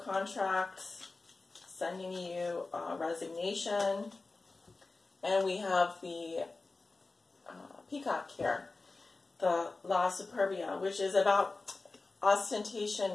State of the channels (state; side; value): quieter; right; 3.6 dB